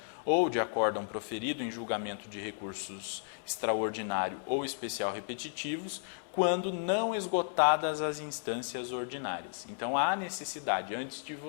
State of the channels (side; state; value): right; silent; 55 dB below the other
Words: ou de acórdão proferido em julgamento de recursos extraordinário ou especial repetitivos, quando não esgotadas as instâncias ordinárias. Então, há necessidade, antes de